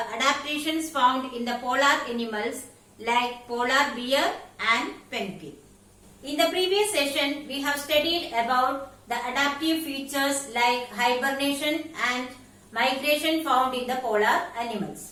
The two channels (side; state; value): both; identical; correlation 1.00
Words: adaptations found in the polar animals like polar bear and penguin. In the previous session, we have studied about the adaptive features like hibernation and migration found in the polar